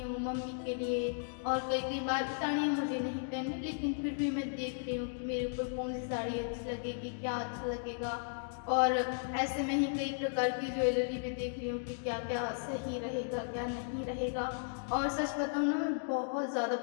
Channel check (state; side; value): silent; right; digital silence